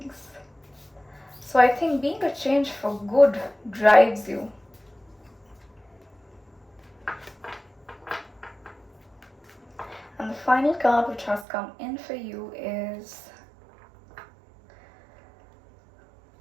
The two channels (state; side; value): drops out; left; at 11.5 s